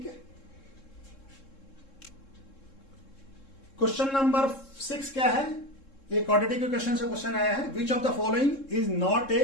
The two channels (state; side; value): late; right; 3.7 ms